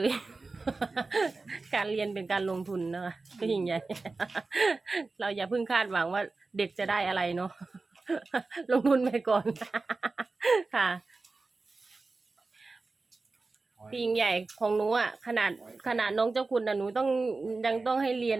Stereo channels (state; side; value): quieter; left; 3.7 dB